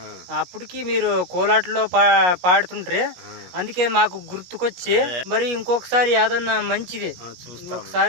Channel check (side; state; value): left; late; 17 ms